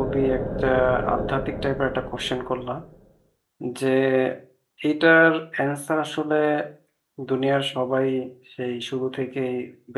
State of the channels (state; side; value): identical; both; correlation 1.00